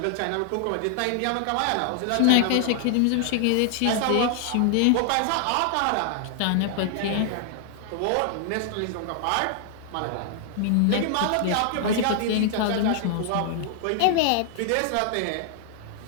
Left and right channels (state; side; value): different; both; correlation 0.00